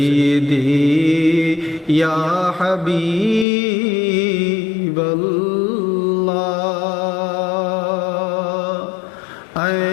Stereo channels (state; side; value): drops out; right; at 3.5 s